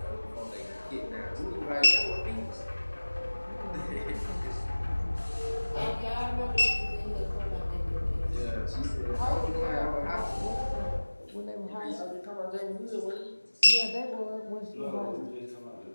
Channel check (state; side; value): inverted; both; correlation -1.00